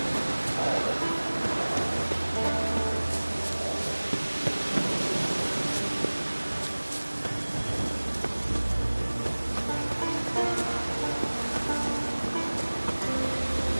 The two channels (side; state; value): both; inverted; correlation -1.00